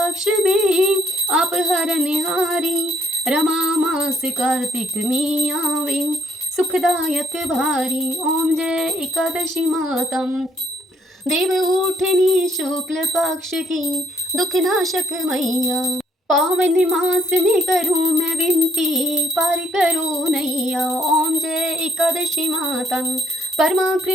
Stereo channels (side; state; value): both; normal; correlation 0.68